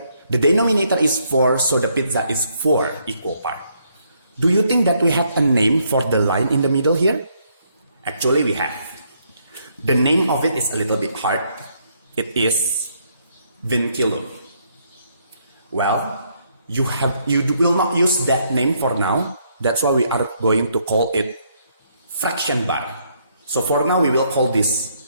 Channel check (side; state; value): both; inverted; correlation -0.72